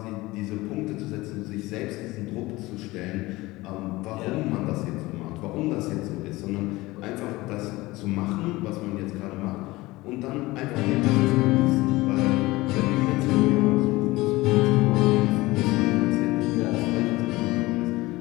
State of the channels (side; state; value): right; quieter; 20.1 dB